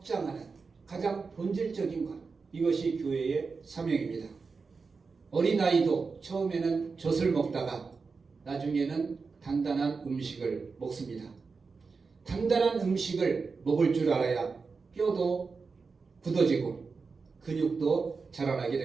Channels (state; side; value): quieter; left; 4.7 dB